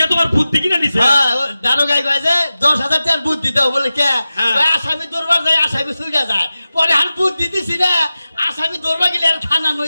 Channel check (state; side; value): inverted; both; correlation -0.95